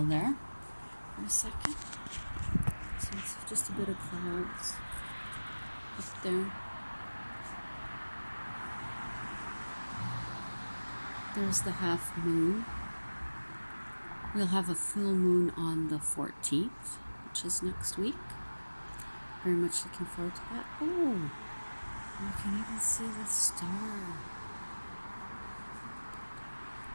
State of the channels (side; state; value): both; inverted; correlation -1.00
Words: there for a second. So it's just a bit of clouds up there. There's the half moon. We'll have a full moon on the 14th, which is next week. Very much looking forward to that. Oh, you can even see the star.